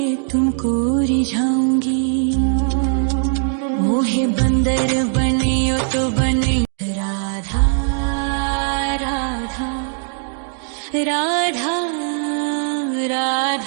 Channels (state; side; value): silent; left; 66 dB below the other